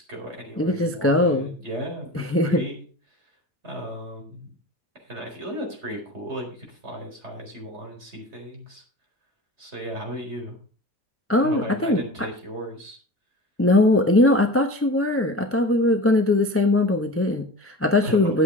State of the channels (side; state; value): both; normal; correlation 0.35